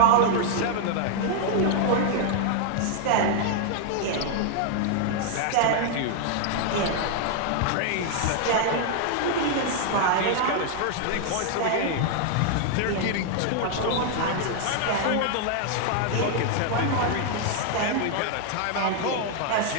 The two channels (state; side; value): different; both; correlation 0.00